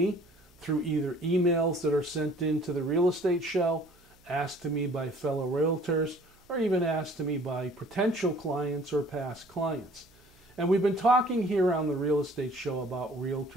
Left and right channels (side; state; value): right; noise; hum, 30 dB below the sound